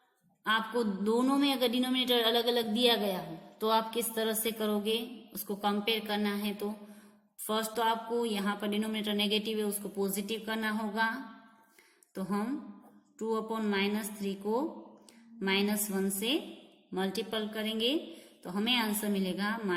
आपको दोनों में अगर डिनोमिनेटर अलग अलग दिया गया हो तो आप किस तरह से करोगे, उसको कंपेयर करना है। तो फर्स्ट तो आपको यहाँ पर डिनोमिनेटर नेगेटिव है उसको पॉजिटिव करना होगा। तो हम 2/-3 को -1 से मल्टीपल करेंगे तो हमें आंसर मिलेगा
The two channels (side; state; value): both; identical; correlation 1.00